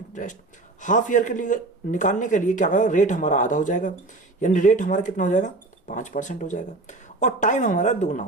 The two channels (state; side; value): quieter; left; 3.1 dB